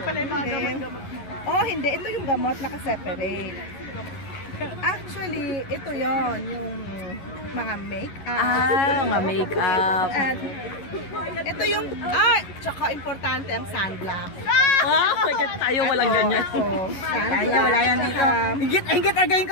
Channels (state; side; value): late; right; 11 ms